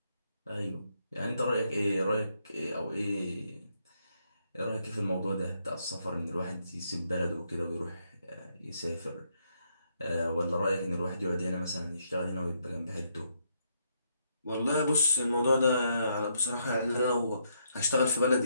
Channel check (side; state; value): both; inverted; correlation -0.76